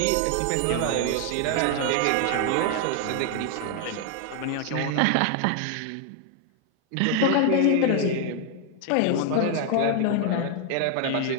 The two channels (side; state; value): both; different; correlation 0.00